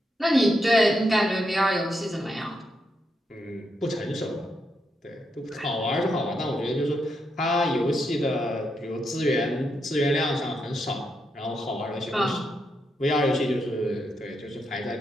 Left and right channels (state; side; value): normal; both; correlation 0.82